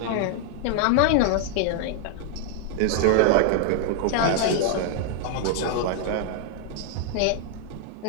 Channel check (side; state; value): both; different; correlation 0.00